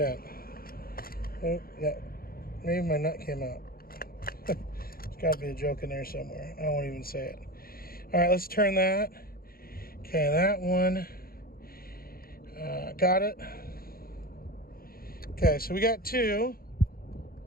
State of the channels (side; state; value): right; late; 0.43 ms